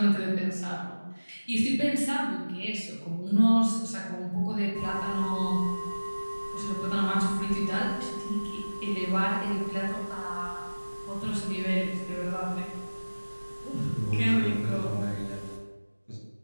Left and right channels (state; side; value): inverted; both; correlation -1.00